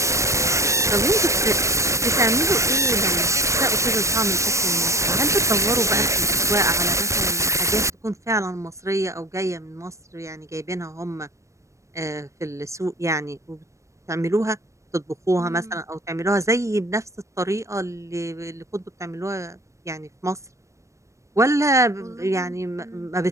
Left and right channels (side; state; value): left; late; 0.15 ms